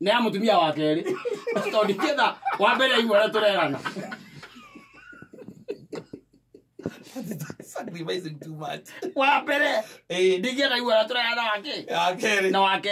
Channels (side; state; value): both; identical; correlation 1.00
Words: amutumia wa keri tondu kitha wa mbere igwara turerana sacrificing too much wa mbere ndigira igwara turerana wake na